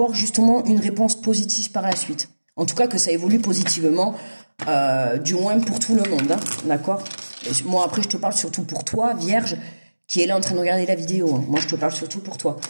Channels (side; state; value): both; inverted; correlation -1.00